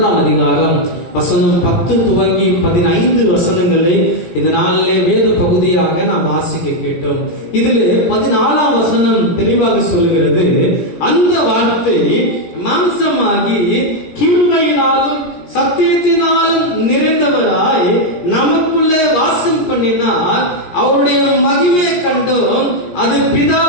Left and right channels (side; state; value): right; late; 17 ms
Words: அதிகாரம் வசனம் 10 துவங்கி 15 வசனங்களை இந்த நாளிலே வேத பகுதியாக நாம் வாசிக்க கேட்டோம். இதில் 14ஆம் வசனம் தெளிவாக சொல்லுகிறது, அந்த வார்த்தை மாம்சமாகி கிருபையினாலும் சத்தியத்தினாலும் நிறைந்தவராய் நமக்குள்ளே வாசம் பண்ணினார். அவருடைய மகிமை கண்டோம். அது